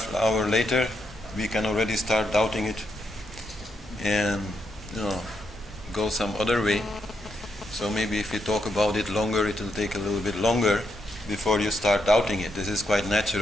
an hour later we can already start doubting it and go some other way. So maybe if you talk about it longer, it will take a little bit longer before you start doubting it. This is quite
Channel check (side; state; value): both; normal; correlation 0.81